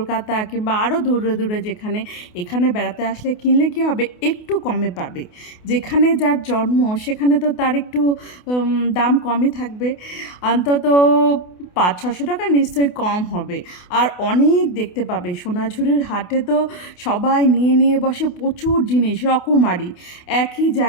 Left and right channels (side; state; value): right; late; 28 ms